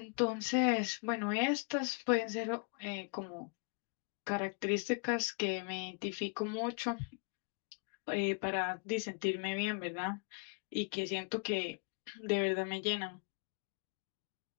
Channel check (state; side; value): quieter; right; 37.5 dB